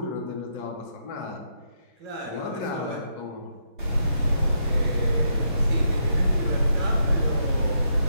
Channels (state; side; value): inverted; both; correlation -0.78